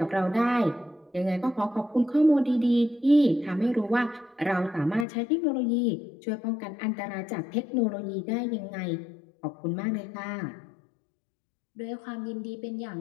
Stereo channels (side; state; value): right; drops out; at 5.1 s